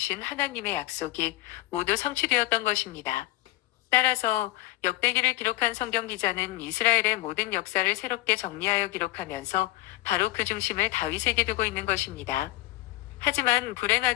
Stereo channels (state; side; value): quieter; right; 17.5 dB